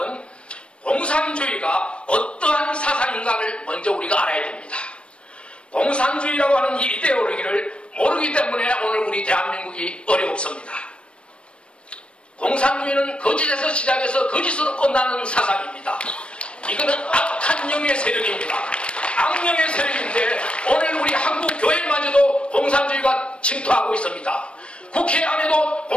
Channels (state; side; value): late; right; 0.059 ms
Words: 공산주의가 어떠한 사상인가를 먼저 우리가 알아야 됩니다. 공산주의라고 하는 이 이데올로기를 모르기 때문에 오늘 우리 대한민국이 어렵습니다. 공산주의는 거짓에서 시작해서 거짓으로 끝나는 사상입니다. 이거는 악한 영의 세력입니다. 악령의 세력인데 오늘 우리 한국 교회마저도 공산주의가 침투하고 있습니다. 국회 안에도